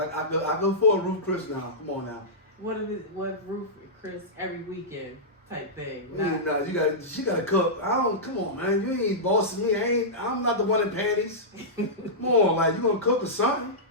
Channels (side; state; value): both; normal; correlation -0.14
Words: go for a Roof Chris now. Come on now. What Roof Chris every weekend type thing. No, she gotta cook. Come on, man. You ain't bossing me. I'm not the one in panties. Come on, like you gonna cook or something.